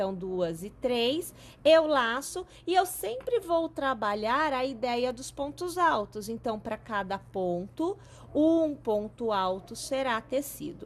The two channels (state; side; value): identical; both; correlation 1.00